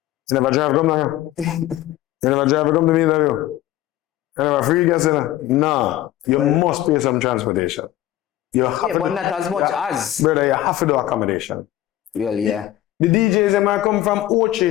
You never drive come now? You never drive come to me now? You never free gas in there? No. You must pay some transportation. You have to but not as much as. Brother, you have to do accommodation. Well, yeah. The DJs that might come from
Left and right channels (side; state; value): right; quieter; 14.4 dB